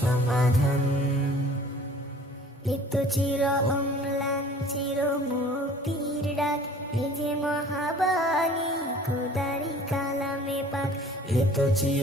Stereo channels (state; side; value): normal; both; correlation 0.49